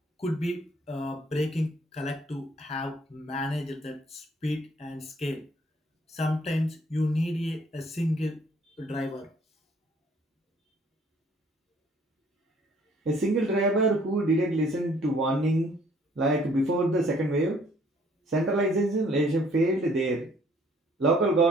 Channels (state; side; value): normal; both; correlation 0.60